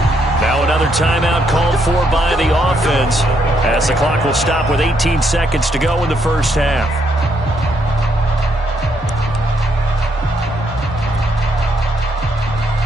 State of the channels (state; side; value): normal; both; correlation 0.74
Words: Now another timeout called for by the offense, as the clock will stop with 18 seconds to go in the first half.